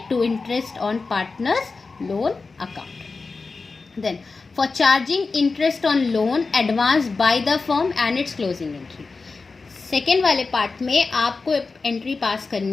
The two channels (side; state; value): right; quieter; 4.1 dB